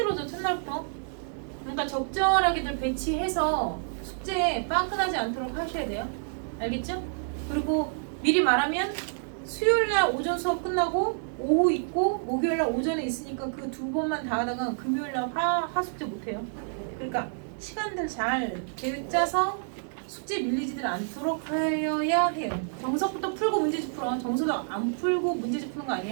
첫날부터. 그러니까 적절하게들 배치해서 숙제 빵끈하지 않도록 하셔야 돼요. 알겠죠? 그리고 미리 말하면 수요일날 오전 수업 끝나고 오후 있고 목요일날 오전에 있으니까 그 2번만 다 하다가 금요일날 하숙제 못해요. 그러니까 시간들 잘 계획 짜서 숙제 밀리지들 않도록 하여야 해요. 정석부터 풀고 문제집 풀어. 정석도 안 풀고 문제집 푸는 거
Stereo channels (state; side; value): silent; left; digital silence